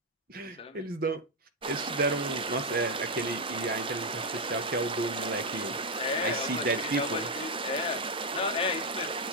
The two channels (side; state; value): both; normal; correlation 0.01